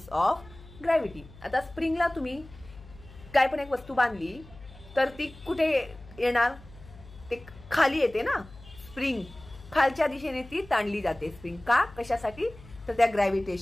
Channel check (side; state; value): left; noise; hum, 20 dB below the sound